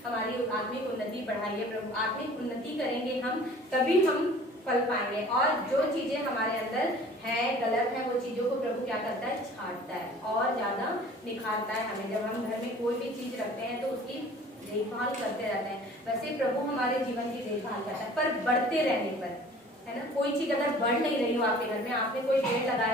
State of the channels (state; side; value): normal; both; correlation 0.48